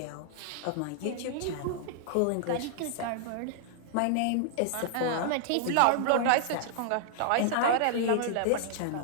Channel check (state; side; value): different; both; correlation -0.01